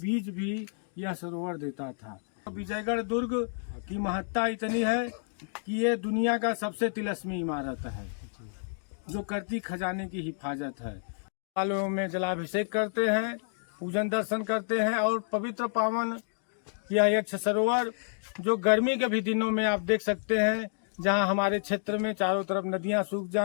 भी यह सरोवर देता था। विजयगढ़ दुर्ग की महत्ता इतनी है कि ये दुनिया का सबसे तिलस्मी इमारत है जो करती खजाने की हिफाजत है। सालों में जलाभिषेक करते हैं, पूजन दर्शन करते हैं और पवित्र पावन यह यक्ष सरोवर जो गर्मी के भी दिनों में आप देख सकते हैं, जहां हमारे क्षेत्र में चारों तरफ नदियां सूख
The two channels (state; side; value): silent; right; digital silence